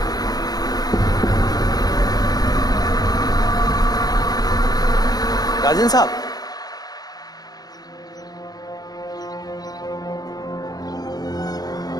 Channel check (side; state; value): right; late; 0.19 ms